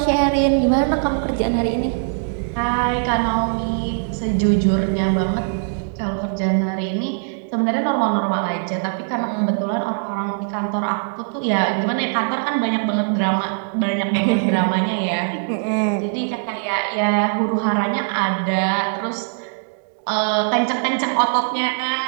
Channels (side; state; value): left; silent; digital silence